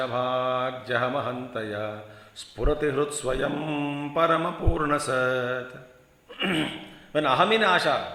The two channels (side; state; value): both; identical; correlation 1.00